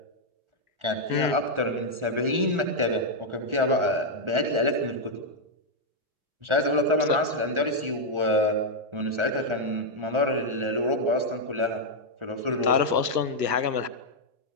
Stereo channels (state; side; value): late; left; 1.4 ms